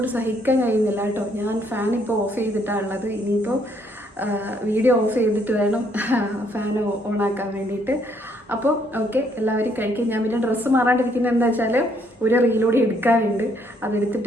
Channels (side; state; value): both; normal; correlation 0.69